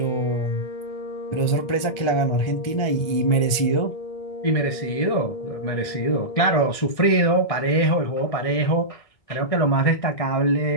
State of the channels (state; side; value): late; right; 1.6 ms